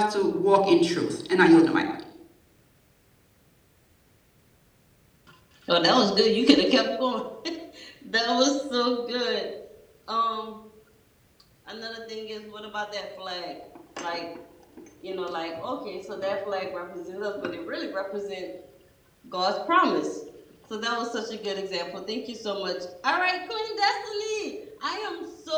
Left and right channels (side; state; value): both; identical; correlation 1.00